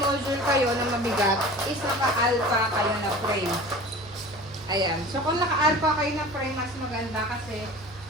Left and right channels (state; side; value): normal; both; correlation 0.39